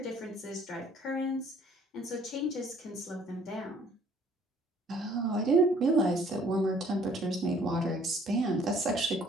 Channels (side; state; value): both; normal; correlation 0.58